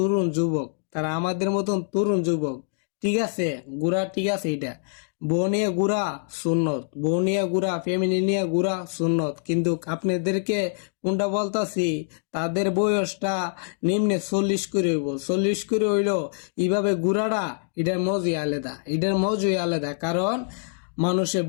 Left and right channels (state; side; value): silent; right; digital silence